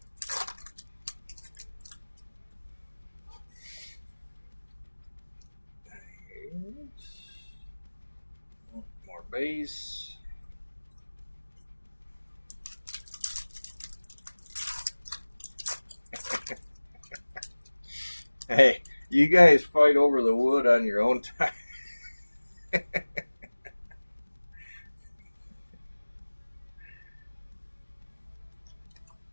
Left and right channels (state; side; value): inverted; both; correlation -1.00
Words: More base. Hey, you guys fight over the wood on your own time.